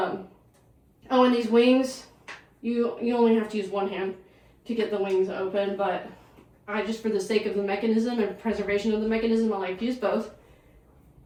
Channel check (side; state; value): both; identical; correlation 1.00